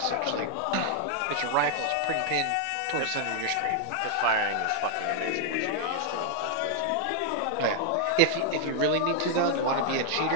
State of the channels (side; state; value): both; different; correlation 0.00